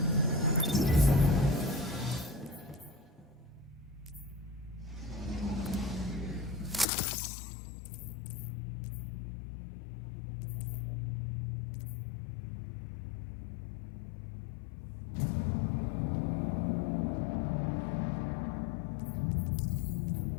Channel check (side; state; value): right; drops out; at 6.9 s